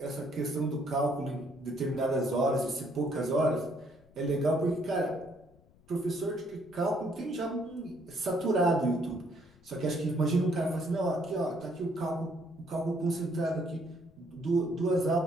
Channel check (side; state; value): left; noise; rumble, 27 dB below the sound